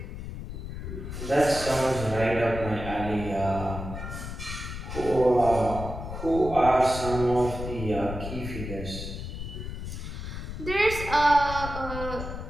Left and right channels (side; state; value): left; noise; rumble, 7 dB below the sound